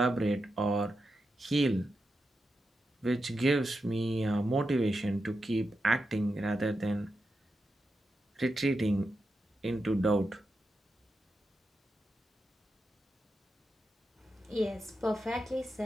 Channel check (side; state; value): both; normal; correlation 0.88